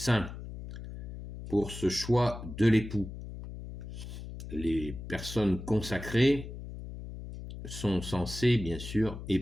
pour ce choix de l'époux. Les personnes consacrées sont censées, bien sûr,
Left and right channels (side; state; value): left; noise; hum, 10 dB below the sound